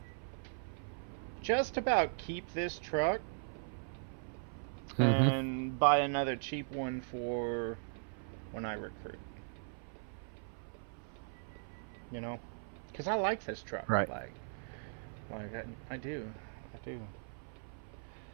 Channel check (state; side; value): silent; left; 52 dB below the other